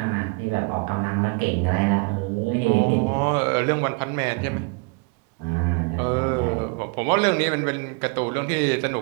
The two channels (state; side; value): quieter; left; 31.2 dB